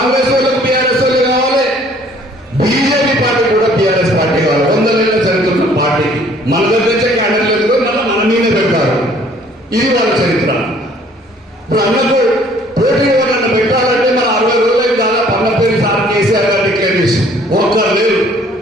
వాళ్ళకి బీఆర్ఎస్ వాళ్ళు కావాలి, బీజేపీ పార్టీ కూడా బీఆర్ఎస్ పార్టీ కావాలి. 100 ఏళ్ళ చరిత్ర పార్టీకి మన దగ్గర క్యాండిడేట్ లేదు, మన మీదే పెడతారు. ఇది వాళ్ళ చరిత్ర. ఇప్పుడు అన్నకు పోటీ ఎవరన్నా పెట్టాలంటే మన 60 రోజులకి దాదాపు అన్న పేరు సార్ కేసీఆర్ గారు డిక్లేర్ చేసి ఒక్కరు లేరు.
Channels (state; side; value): normal; both; correlation 0.58